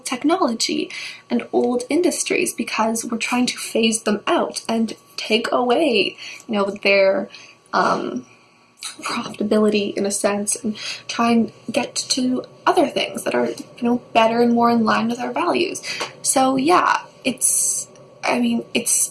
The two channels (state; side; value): identical; both; correlation 1.00